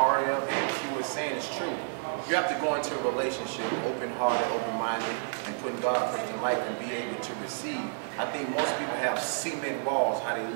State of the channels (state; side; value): silent; left; digital silence